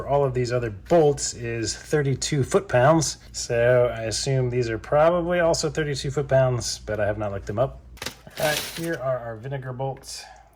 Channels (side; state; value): both; identical; correlation 1.00